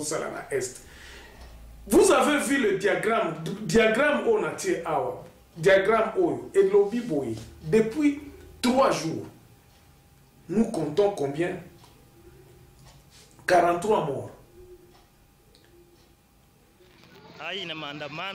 vous avez vu le diagramme Onatie Awa, diagramme Oyo et lobby Boy. Depuis 3 jours, nous comptons combien? 43 morts. Hii ni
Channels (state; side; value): identical; both; correlation 1.00